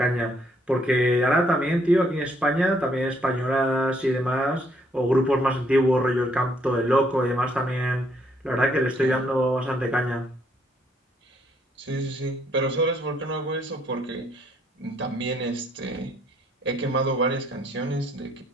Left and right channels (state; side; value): normal; both; correlation 0.69